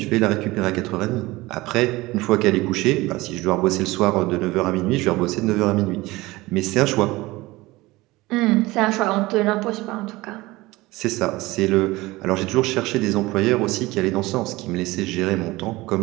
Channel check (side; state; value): left; quieter; 20.2 dB